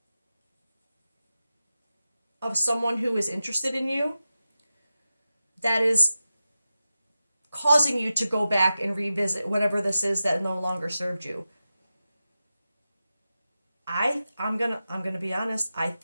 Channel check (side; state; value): both; inverted; correlation -0.92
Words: of someone who is interested in you that is causing you to go back and revisit whatever this is that no longer served you. I'm gonna be honest. I